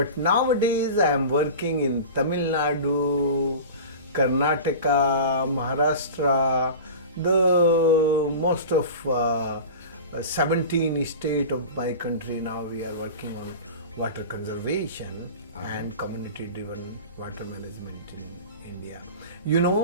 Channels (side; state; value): both; inverted; correlation -0.33